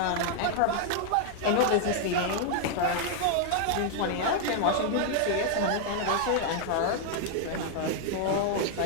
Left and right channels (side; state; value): both; different; correlation 0.00